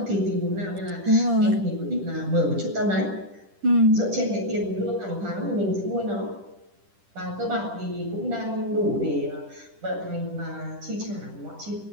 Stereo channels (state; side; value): late; left; 10 ms